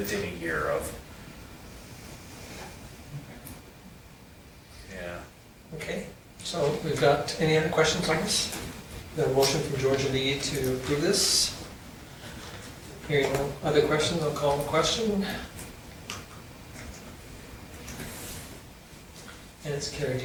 a year of. Yeah. Okay, so we've got, any other questions on this? The motion from Georgia Lee to approve this. Hearing no other questions, I'll call the question. And it's carried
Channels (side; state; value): both; identical; correlation 1.00